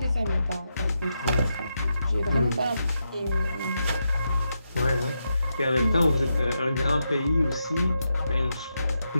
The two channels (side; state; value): both; inverted; correlation -0.85